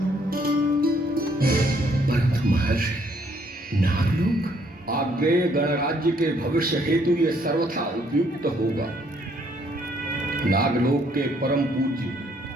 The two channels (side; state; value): both; normal; correlation 0.67